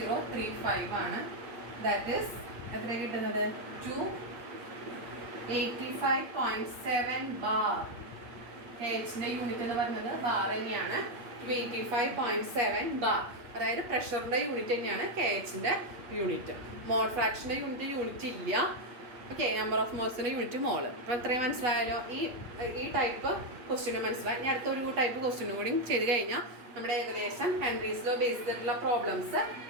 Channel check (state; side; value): late; left; 8.7 ms